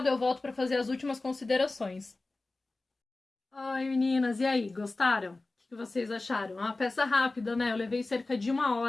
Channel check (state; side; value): quieter; right; 3.2 dB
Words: Eu volto para fazer as últimas considerações. Oi, meninas, e aí, gostaram? O que vocês acharam? É uma peça rápida, né? Eu levei cerca de 1